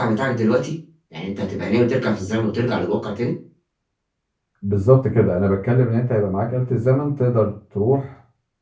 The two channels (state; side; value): identical; both; correlation 1.00